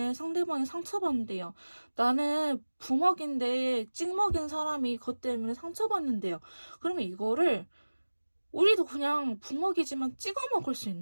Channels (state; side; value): inverted; both; correlation -1.00